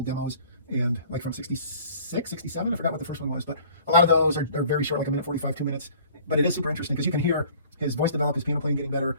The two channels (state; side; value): inverted; both; correlation -0.51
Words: demos, and like from 66, 67, I forgot what the first one was, but a lot of those are very short, like a minute 45, 2 minutes. But it is super interesting because you can hear his voice develop, his piano playing getting better,